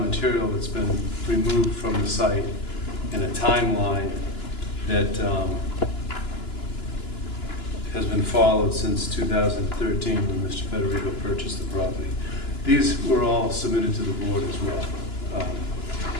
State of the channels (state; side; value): late; right; 2.9 ms